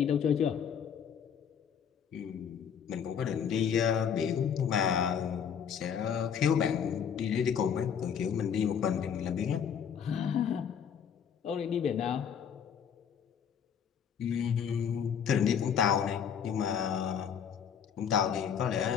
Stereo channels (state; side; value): quieter; right; 7.8 dB